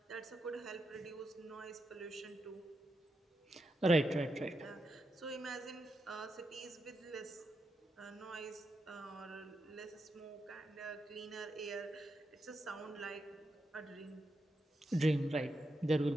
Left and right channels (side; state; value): both; normal; correlation 0.85